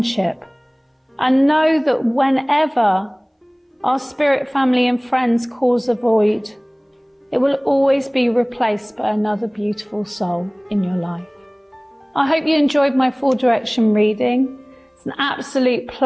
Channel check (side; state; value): both; identical; correlation 1.00